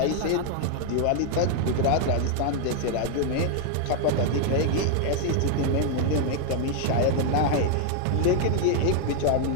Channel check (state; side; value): different; both; correlation 0.00